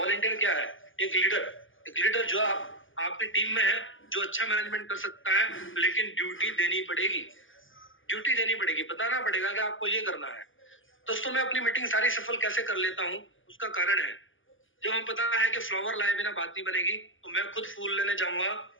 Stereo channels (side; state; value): right; late; 0.57 ms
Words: क्या है? एक लीडर जो आपकी टीम में है, जो अच्छा मैनेजमेंट कर सकता है, लेकिन ड्यूटी देनी पड़ेगी, बताना पड़ेगा कि आपको ये करना है। दोस्तों, मैं अपनी मीटिंग सारी सफल कैसे कर लेता हूँ, उसका कारण है, जब हमें पता है कि फ्लावर लाए बिना बात नहीं बनेगी, तो मैं खुद फूल लेने जाऊंगा